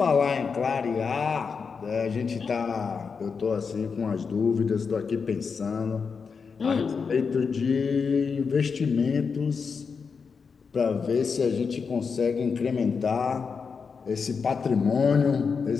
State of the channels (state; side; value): quieter; right; 5.5 dB